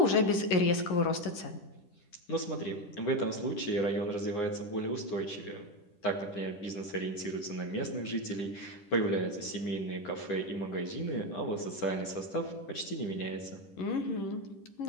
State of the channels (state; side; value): late; right; 10 ms